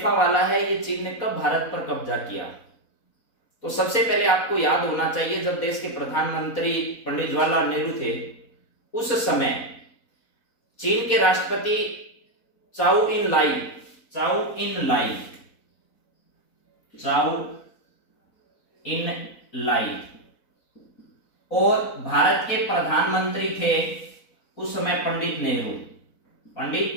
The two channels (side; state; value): right; late; 4.2 ms